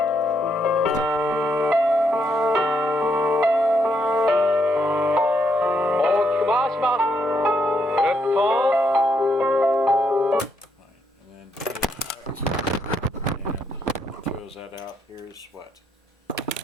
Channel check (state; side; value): normal; both; correlation 0.76